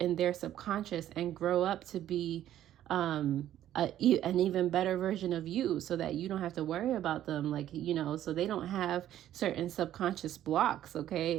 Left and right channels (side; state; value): left; quieter; 12.0 dB